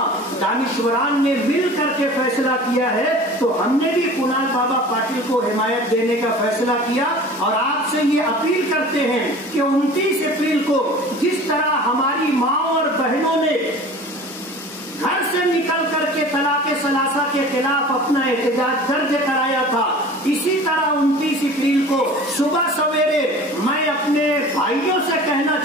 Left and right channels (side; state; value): both; normal; correlation 0.41